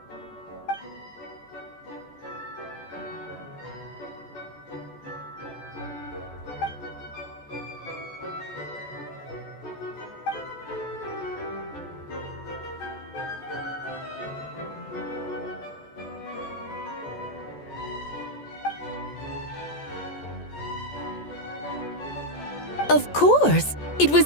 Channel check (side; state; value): right; late; 14 ms